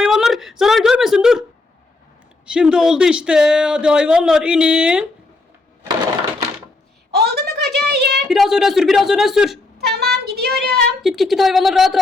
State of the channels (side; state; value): right; quieter; 3.2 dB